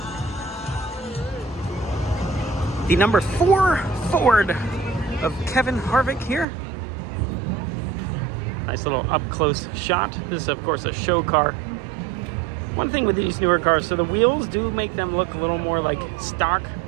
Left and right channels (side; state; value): left; drops out; at 6.5 s